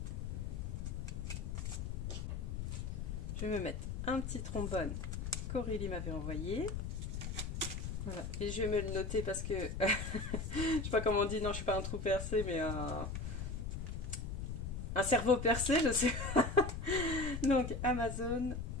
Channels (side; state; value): left; noise; rumble, 4 dB below the sound